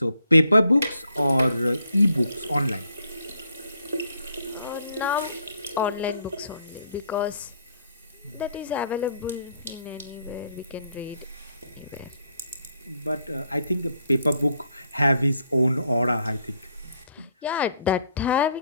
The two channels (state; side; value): inverted; both; correlation -0.69